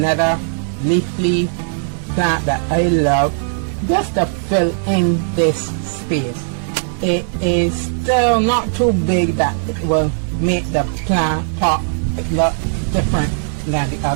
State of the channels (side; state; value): left; silent; digital silence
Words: leafy plant that I love, just to fill in this space. It is still not too big that it will make the plant pot look different than the